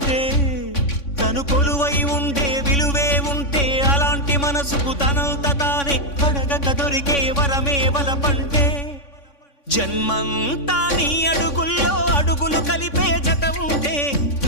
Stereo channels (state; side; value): late; right; 3.5 ms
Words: తను కొలువై ఉండే విలువే ఉంటే అలాంటి మనసుకు తనంత తానే అడగక దొరికే వరమే వలపంటే జన్మంతా నీ అడుగుల్లో అడుగులు కలిపే జత ఉంటే